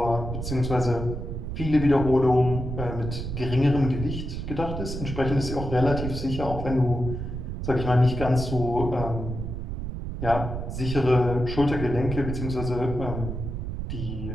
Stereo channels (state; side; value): noise; right; rumble, 5 dB below the sound